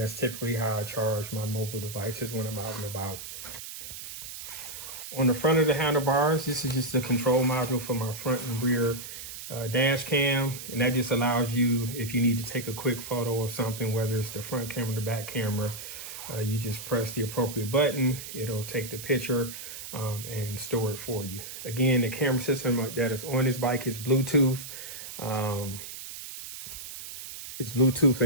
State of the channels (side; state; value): right; noise; hiss, 10 dB below the sound